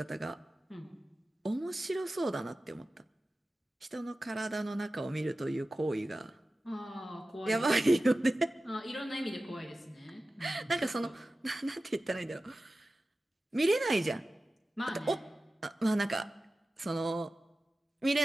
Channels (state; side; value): normal; both; correlation 0.95